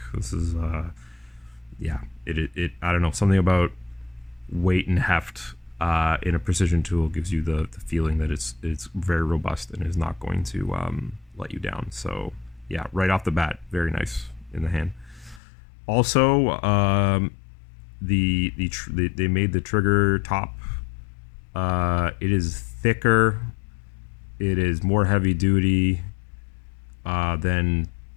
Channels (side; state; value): right; drops out; at 15.4 s